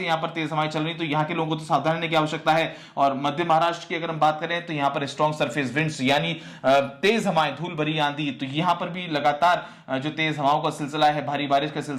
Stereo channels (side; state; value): both; identical; correlation 1.00